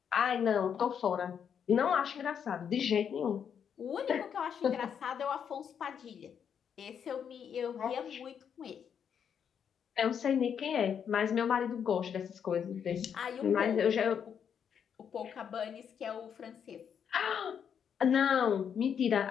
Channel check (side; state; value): right; quieter; 7.8 dB